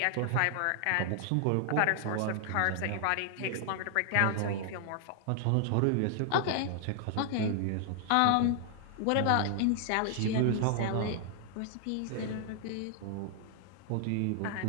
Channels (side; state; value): both; different; correlation 0.00